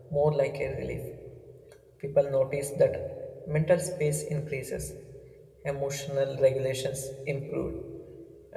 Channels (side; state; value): both; identical; correlation 1.00